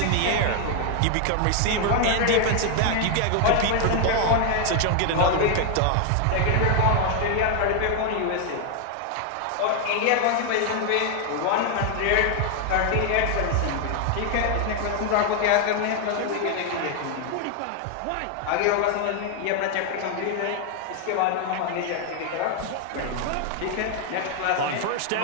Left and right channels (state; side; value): different; both; correlation 0.00